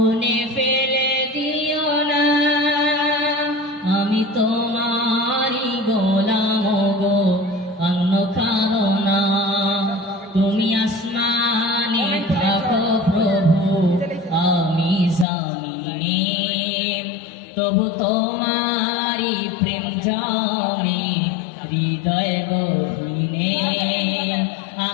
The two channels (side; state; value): right; drops out; at 15.2 s